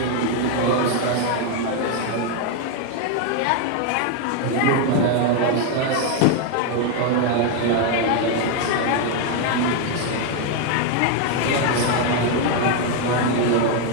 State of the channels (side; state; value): both; different; correlation 0.01